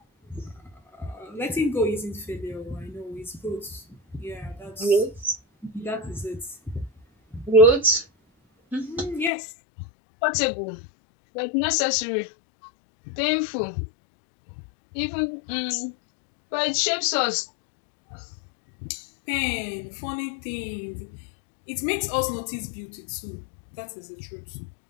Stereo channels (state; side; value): drops out; right; at 9.3 s